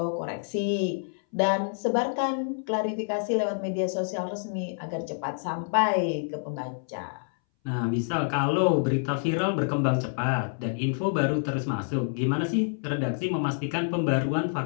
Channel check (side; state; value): right; silent; 60 dB below the other